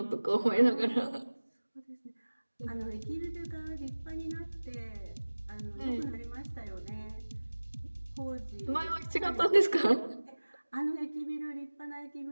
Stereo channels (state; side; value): inverted; both; correlation -1.00